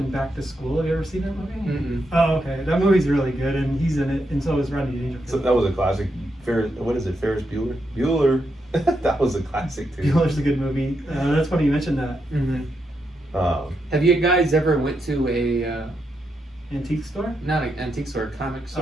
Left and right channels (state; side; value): normal; both; correlation 0.82